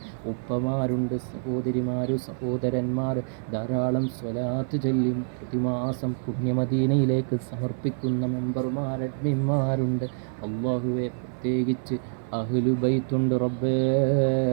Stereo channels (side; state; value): left; silent; digital silence